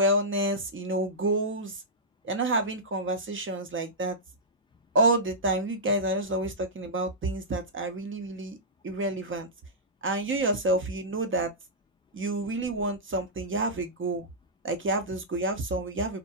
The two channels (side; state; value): both; normal; correlation -0.13